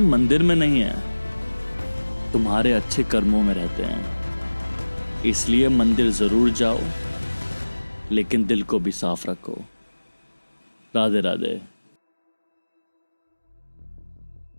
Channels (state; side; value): inverted; both; correlation -1.00